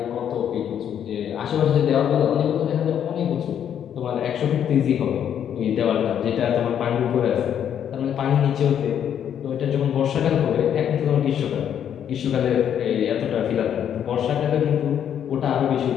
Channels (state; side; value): quieter; right; 9.2 dB